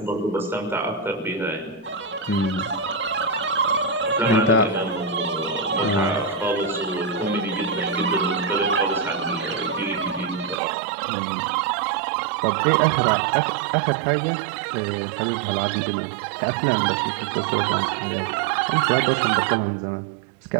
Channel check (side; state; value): left; drops out; at 10.6 s